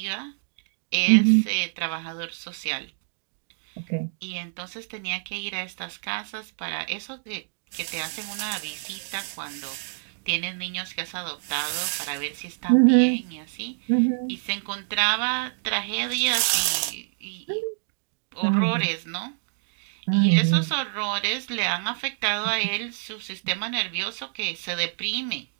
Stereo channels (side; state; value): left; silent; digital silence